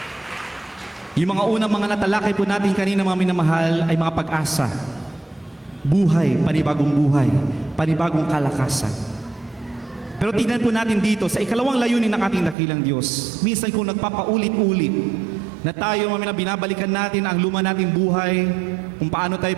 Yung mga unang mga natalakay po natin kanina, mga minamahal, ay mga pag-asa. Buhay, panibagong kalakasan. Pero tingnan po natin dito, sa ikalawang layunin ng ating dakilang Diyos, minsan kung nagpapaulit-ulit, na tayo, binabalikan natin ang luma nating buhay, kung paano tayo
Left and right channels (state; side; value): drops out; left; at 12.6 s